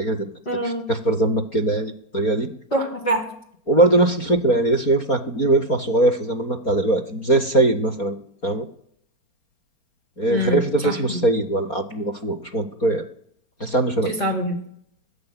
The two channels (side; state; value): right; late; 4.2 ms